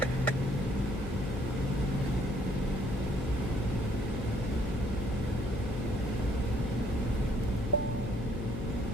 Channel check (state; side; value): noise; left; hum, 4 dB below the sound